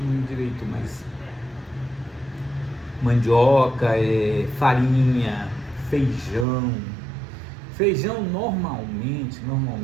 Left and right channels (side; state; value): left; drops out; at 6.5 s